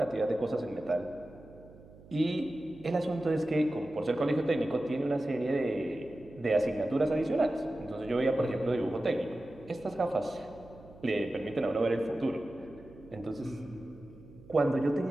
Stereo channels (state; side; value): noise; right; hum, 21 dB below the sound